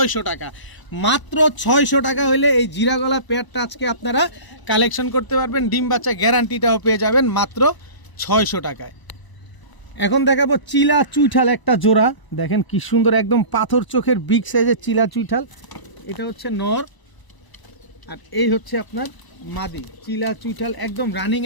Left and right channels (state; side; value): late; right; 1.0 ms